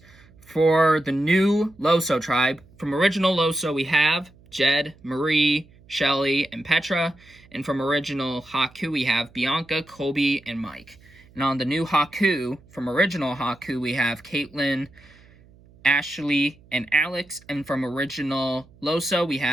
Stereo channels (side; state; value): right; noise; hum, 26 dB below the sound